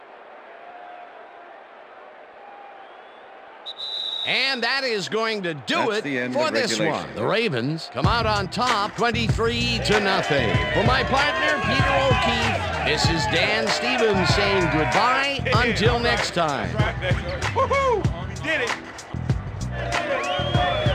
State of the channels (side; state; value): both; identical; correlation 1.00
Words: And that is going to do That's the it end for of this regulation. one. The Ravens come out on top 23-0. For my partner, Peter O'Keefe, this is Dan Stevens saying goodbye until next time. Woohoo! Did it.